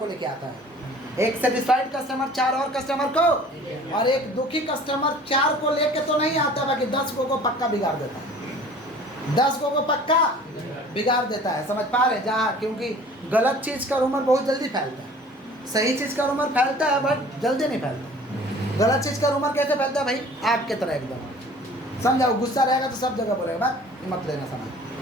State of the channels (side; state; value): both; normal; correlation 0.48